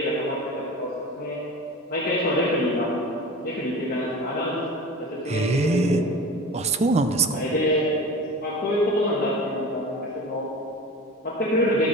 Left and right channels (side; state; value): both; normal; correlation 0.34